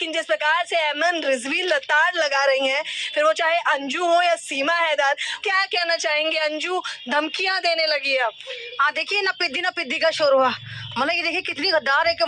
जिस प्रकार से एमन रिजवी लताड़ लगा रही हैं, फिर वो चाहे अंजू हो या सीमा हैदर, क्या कहना चाहेंगे? अंजू धमकियां देने लगी है अब। हाँ देखिए ना पिद्दी का शोर हुआ, मतलब ये देखिए कितनी गद्दार है कि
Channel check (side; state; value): both; identical; correlation 1.00